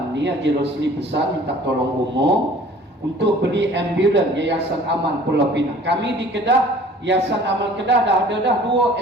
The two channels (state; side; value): normal; both; correlation 0.50